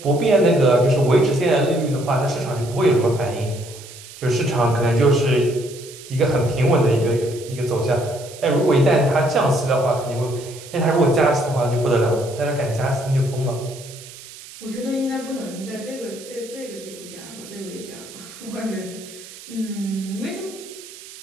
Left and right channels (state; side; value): noise; right; hiss, 17 dB below the sound